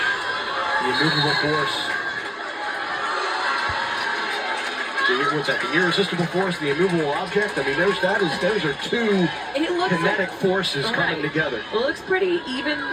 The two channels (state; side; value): identical; both; correlation 1.00